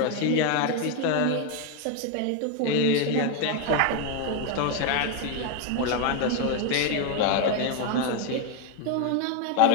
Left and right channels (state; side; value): different; both; correlation 0.01